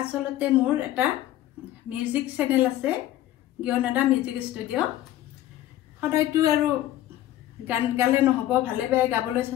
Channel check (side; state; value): right; quieter; 13.6 dB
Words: মোৰ এটা মিউজিক চেনেল আছে, জ্ঞানদা মিউজিক ষ্টুডিঅ'। সদায়তো আৰু গান গালে নহ'ব, ভালে বেয়া গাবলৈ